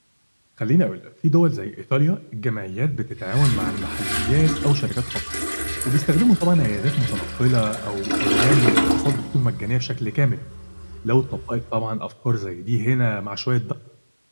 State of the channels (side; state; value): both; inverted; correlation -1.00